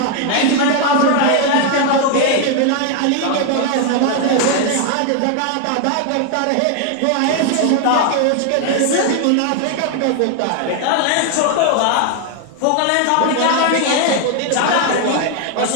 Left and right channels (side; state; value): both; different; correlation 0.00